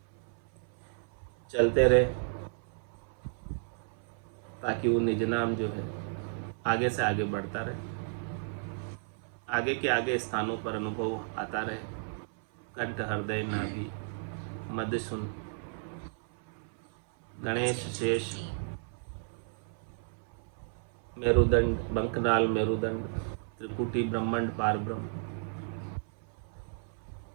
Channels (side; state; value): left; silent; 56 dB below the other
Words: चलते रहे ताकि वो निज नाम जो है आगे से आगे बढ़ता रहे, आगे के आगे स्थानों पर अनुभव आता रहे। कंठ, हृदय, नाभि, मध्य सुन, गणेश, शेष, मेरुदंड, बंकनाल, मेरुदंड, त्रिकुटी, ब्रह्मांड, पार ब्रह्म,